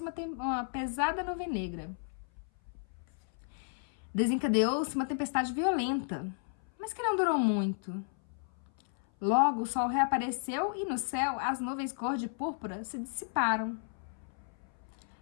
uma pesada nuvem negra. Desencadeou-se uma tempestade violenta, mas que não durou muito. Logo, o sol reapareceu e no céu as nuvens cor de púrpura se dissiparam.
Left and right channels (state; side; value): silent; right; 56 dB below the other